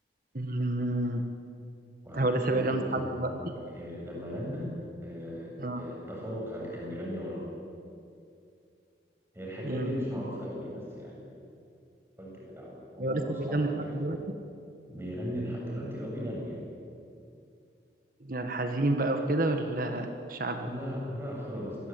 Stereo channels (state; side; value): normal; both; correlation 0.54